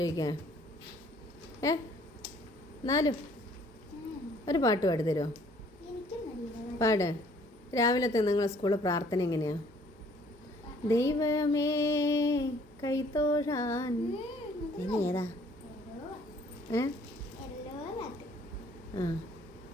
എന്നാലും ഒരു പാട്ട് പാടി തരുമോ? പാട്. രാവിലത്തെ നിങ്ങളെ സ്കൂളിൽ പ്രാർത്ഥന എങ്ങനെയാ? ദൈവമേ കൈത്തോഴാൻ. ഏതാ?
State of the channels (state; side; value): normal; both; correlation 0.59